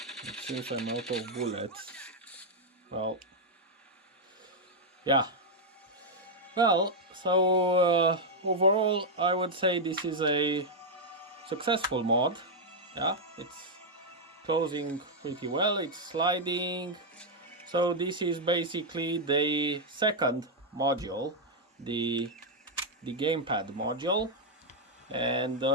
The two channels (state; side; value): normal; both; correlation -0.01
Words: It seems I'm out of bullets. Well, yeah. Well, so overall I would say this is a successful mod. Yeah, it's closing pretty well, it's sliding. So this is basically the second module, the gamepad module, and